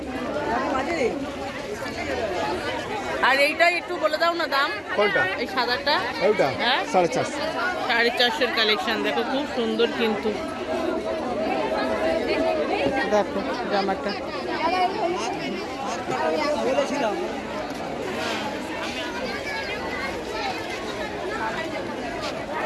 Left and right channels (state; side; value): identical; both; correlation 1.00